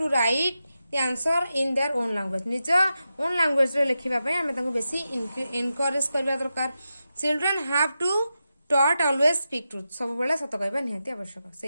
write the answer in their own language. निज ओन लैंग्वेज रे लिखिबा पई हमें तांको बेसी एनकरेज करबा दरकार. Children have to taught always speak truth. सब बेला सत कहबा निहाती आवश्यक.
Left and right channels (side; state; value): both; inverted; correlation -0.90